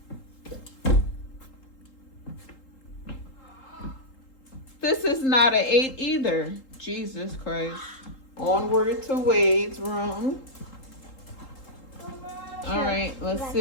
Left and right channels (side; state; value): right; late; 3.8 ms